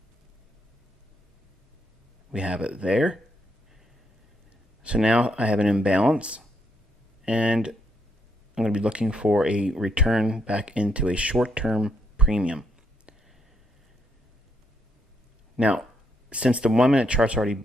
We have it there. So now I have an imbalance, and I'm going to be looking for a return back into a short-term premium. Now, since the 1 minute chart's already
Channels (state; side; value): normal; both; correlation 0.76